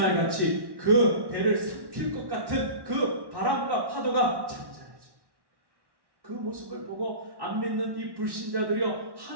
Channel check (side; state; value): left; late; 1.1 ms